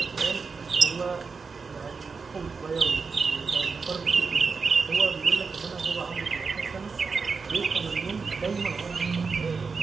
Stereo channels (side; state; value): left; quieter; 4.9 dB